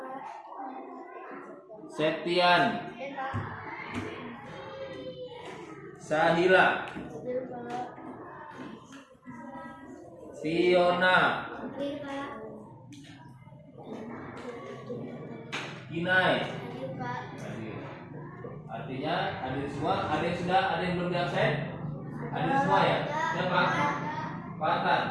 Septian. Sahila. Fiona. Kinai. Artinya hadir semua. Ada yang sudah, ada yang belum absen? Hadir semua ya? Siapa?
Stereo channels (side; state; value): both; identical; correlation 1.00